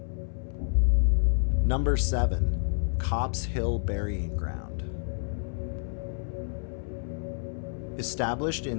Number 7. Copp's Hill Burying Ground. Established in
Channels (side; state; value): right; silent; 57 dB below the other